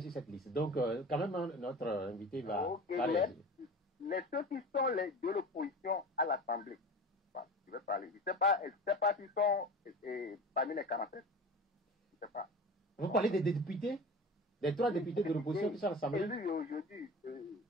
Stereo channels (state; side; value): normal; both; correlation 0.35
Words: cette liste. Donc, quand même, notre invité va parler. Ceux qui sont de l'opposition à l'Assemblée, je vais parler. Je ne sais pas s'ils sont parmi les 47. Je ne sais pas. Vous parlez des députés? Des 3 députés de l'opposition qui sont à l'Assemblée? Élus aujourd'hui